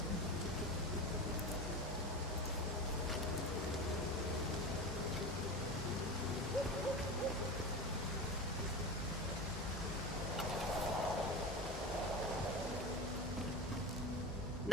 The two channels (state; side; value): normal; both; correlation 0.27